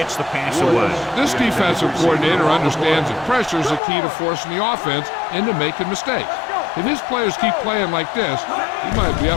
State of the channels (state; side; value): drops out; right; at 3.8 s